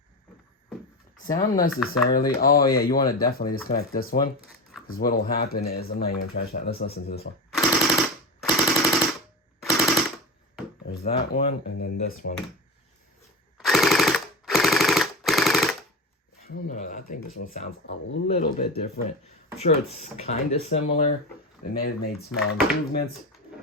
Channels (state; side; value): normal; both; correlation 0.23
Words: Sound necessarily. Oh yeah, you want to definitely disconnect this one. Because what will happen is, I'm not even trying to shout. Let's listen to this one. There's that one, and then this one. I don't know, I think this one sounds a little bit different. I'm sure it's kind of similar. They may have made small improvements.